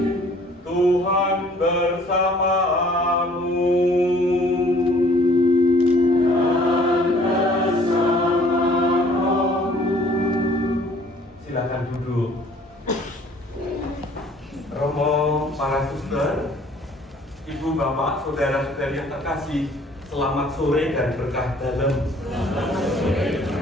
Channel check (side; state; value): both; normal; correlation 0.56